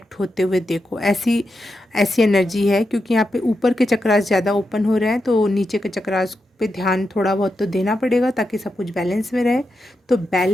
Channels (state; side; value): normal; both; correlation 0.87